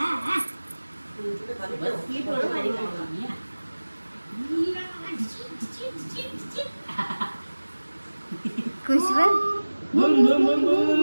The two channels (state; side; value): inverted; both; correlation -1.00